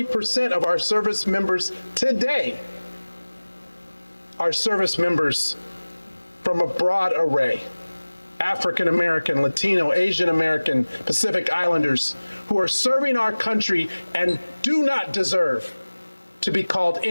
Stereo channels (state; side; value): inverted; both; correlation -1.00